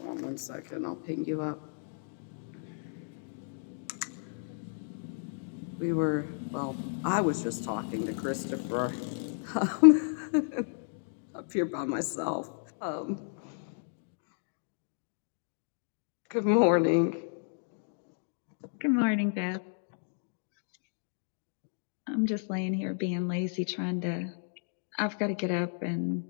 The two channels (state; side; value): silent; right; digital silence